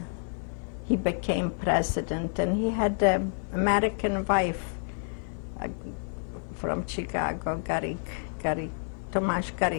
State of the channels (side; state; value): right; silent; digital silence